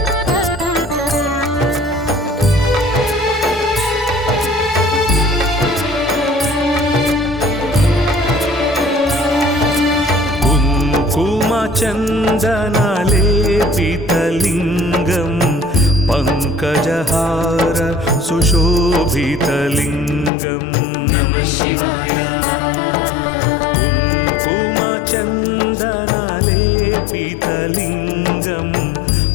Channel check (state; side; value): drops out; right; at 20.3 s